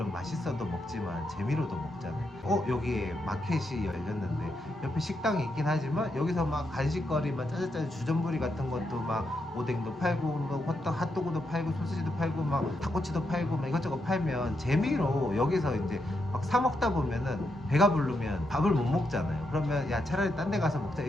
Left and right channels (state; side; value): normal; both; correlation 0.82